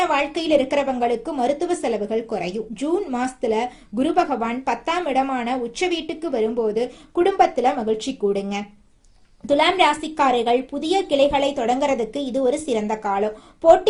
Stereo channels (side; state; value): both; identical; correlation 1.00